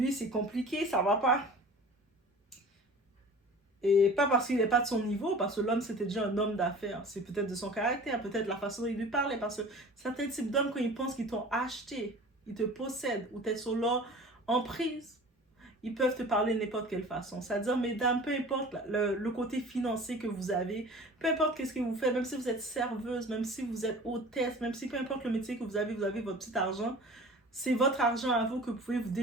c'est compliqué, ça va pas. Et pas parce qu'il n'est pas de son niveau, parce que l'homme, c'était déjà un homme d'affaires. C'est peut-être de son caractère, peut-être la façon dont il lui parlait. Parce que certains types d'hommes, quand ils pensent qu'ils t'ont acheté, ils te possèdent, ou t'es sur leur emprise, ils peuvent te parler de n'importe quelle façon. C'est-à-dire, mesdames, peu importe le côté financier que vous avez, peu importe qu'est-ce que vous faites, même si vous êtes serveuse, même si vous êtes hôtesse, même si peu importe le métier que vous avez votre petit argent, c'est votre argent à vous que vous pouvez vous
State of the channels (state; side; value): normal; both; correlation 0.41